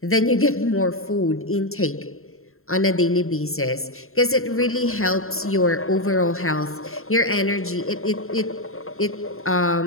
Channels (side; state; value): right; late; 0.62 ms